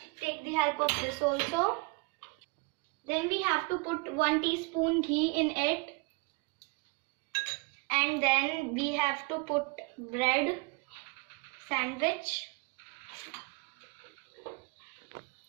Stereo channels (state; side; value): quieter; left; 29.7 dB